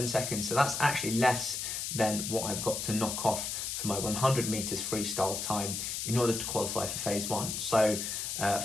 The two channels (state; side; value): noise; left; hiss, 3 dB below the sound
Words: seconds. So that's actually less than what I've got to knock off for my 100 meters freestyle time in order to qualify for phase one. So